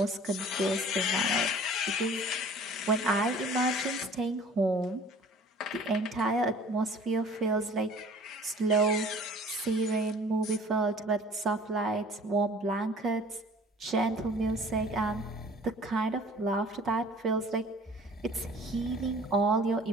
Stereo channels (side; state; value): both; normal; correlation 0.48